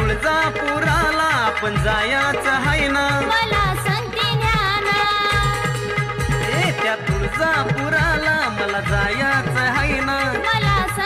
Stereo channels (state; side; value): identical; both; correlation 1.00